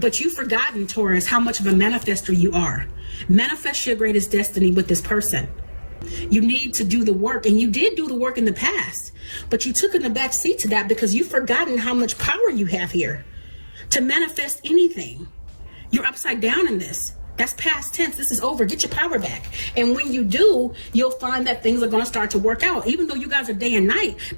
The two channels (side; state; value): both; inverted; correlation -1.00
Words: you've forgotten, Taurus, how much of a manifester you are. Manifest your greatest destiny with this person. You need to do the work, and you did do the work in the past, but you took in the back seat to that because you've forgotten how much power you have here to manifest anything. You're upside down in this. That's past tense. This is over. Get your power back. And when you do, you'll find that things are going to start to work out. Even though you guys are day and night,